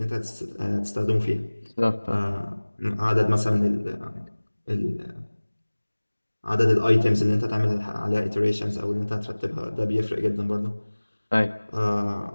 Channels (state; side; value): inverted; both; correlation -1.00